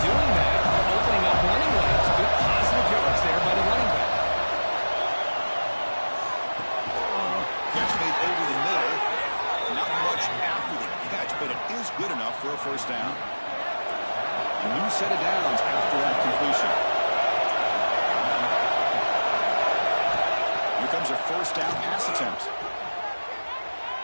doing that, they're opening up running lanes. Good positive yards there by the running back. Catch made over the middle. Not much after the catch, but it is good enough for a first down. A new set of downs after that completion. Here comes a first down pass attempt.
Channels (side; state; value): both; inverted; correlation -1.00